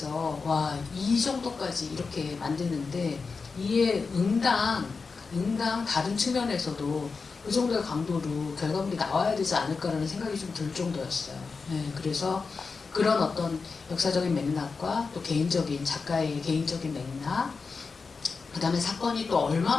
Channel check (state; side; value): quieter; right; 4.7 dB